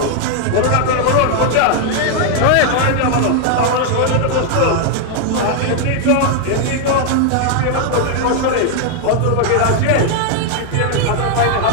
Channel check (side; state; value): both; different; correlation 0.00